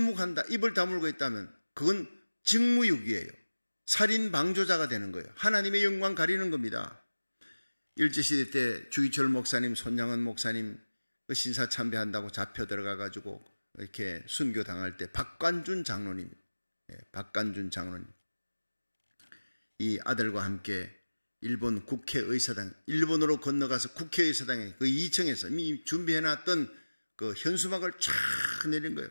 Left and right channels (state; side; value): inverted; both; correlation -1.00